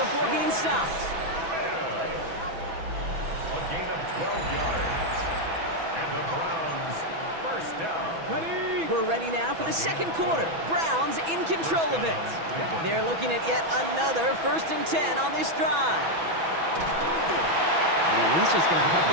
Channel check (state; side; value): late; left; 6.1 ms